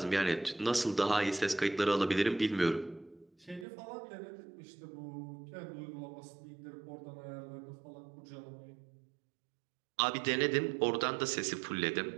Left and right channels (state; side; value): drops out; left; at 3.7 s